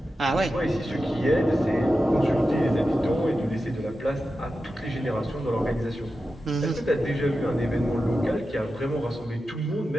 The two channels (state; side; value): normal; both; correlation 0.91